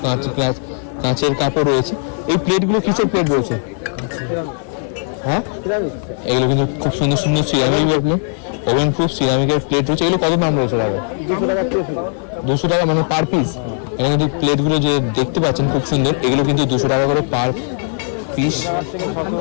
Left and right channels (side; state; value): right; silent; 58 dB below the other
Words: কাঁচের কাপও রয়েছে। এই প্লেটগুলো কিসের প্লেট রয়েছে? হ্যাঁ, এগুলো কিন্তু খুব সুন্দর সুন্দর সিরামিক ওভেন প্রুফ সিরামিকের প্লেট রয়েছে। এগুলো কত দাম রয়েছে দাদা? 200 টাকা মানে পার পিস। এখানে কিন্তু প্লেটগুলো যে দেখতে পাচ্ছেন খুব সুন্দর, এগুলো কিন্তু 200 টাকা করে পার পিস।